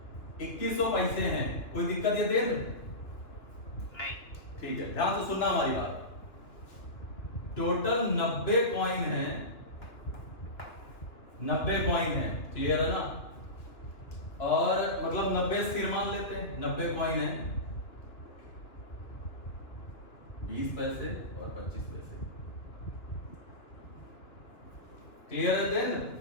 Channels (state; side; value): late; right; 2.7 ms